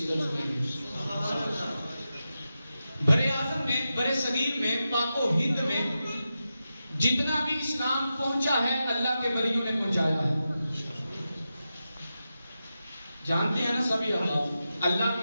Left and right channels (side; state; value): both; inverted; correlation -0.91